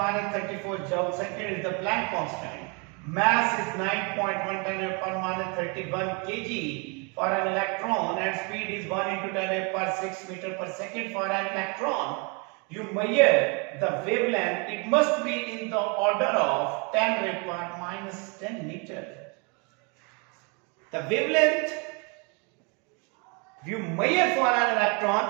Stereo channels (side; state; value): left; quieter; 33.1 dB